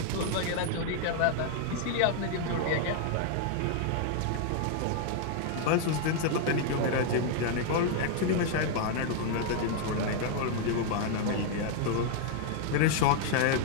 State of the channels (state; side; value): different; both; correlation 0.00